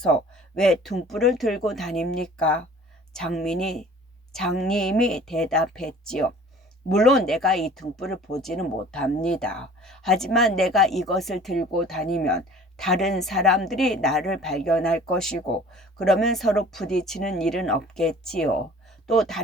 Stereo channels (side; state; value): both; normal; correlation 0.48